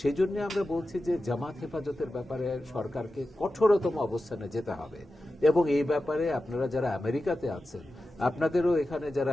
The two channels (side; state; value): both; normal; correlation 0.93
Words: জন্য আমরা বলছি যে জামাত হেফাজতের ব্যাপারে সরকারকে কঠোরতম অবস্থানে যেতে হবে, এবং এই ব্যাপারে আপনারা যারা আমেরিকাতে আছেন, আপনাদেরও এখানে